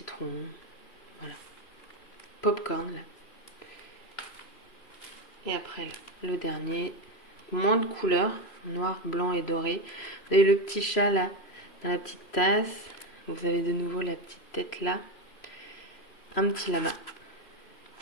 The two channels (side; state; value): right; late; 3.0 ms